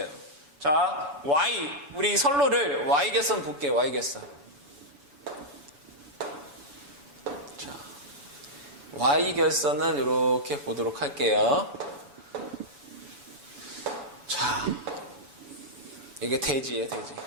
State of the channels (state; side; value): late; left; 7.0 ms